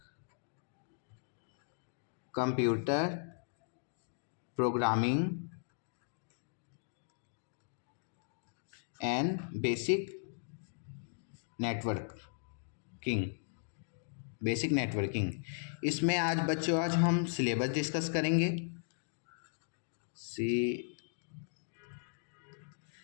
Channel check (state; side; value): silent; right; digital silence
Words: Computer programming and basic networking. इसमें आज हम सिलेबस डिस्कस करेंगे।